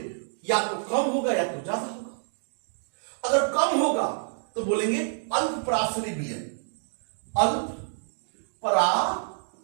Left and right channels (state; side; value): silent; left; digital silence